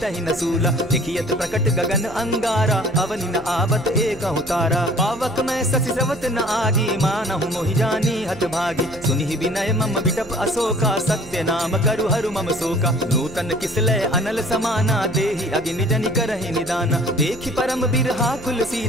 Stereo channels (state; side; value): noise; right; hum, 18 dB below the sound